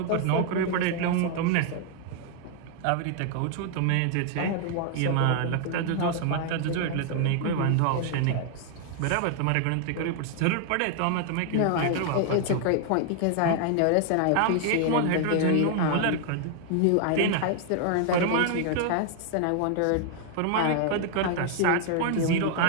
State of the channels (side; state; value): both; different; correlation 0.00